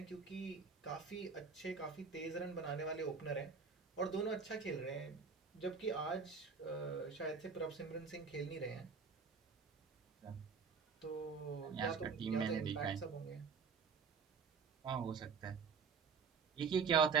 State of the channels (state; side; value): quieter; left; 5.5 dB